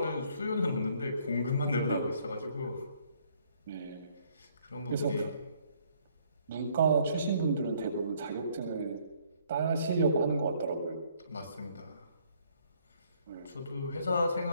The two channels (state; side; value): inverted; both; correlation -0.65